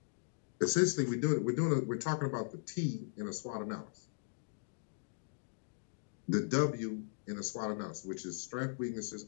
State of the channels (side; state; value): right; silent; digital silence